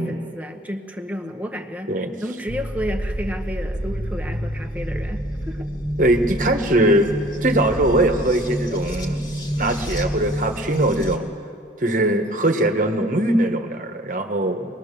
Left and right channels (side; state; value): both; normal; correlation 0.50